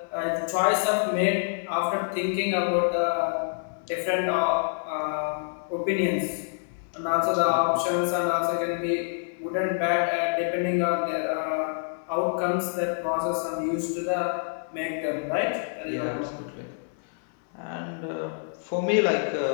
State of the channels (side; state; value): right; silent; 60 dB below the other